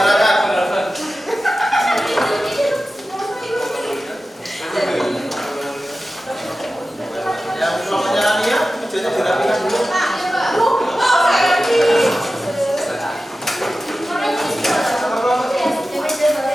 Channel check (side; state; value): both; normal; correlation 0.94